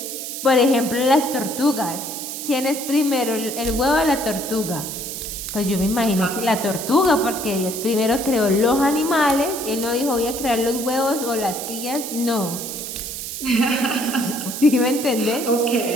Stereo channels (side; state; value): right; noise; hiss, 7 dB below the sound